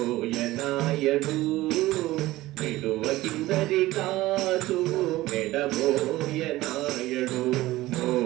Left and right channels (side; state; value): left; quieter; 17.4 dB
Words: విడువ కిందరిగాచు వెడబోయనాయడు.